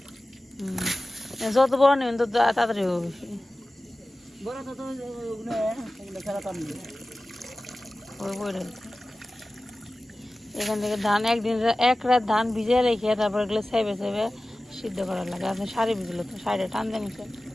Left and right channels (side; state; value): both; normal; correlation 0.96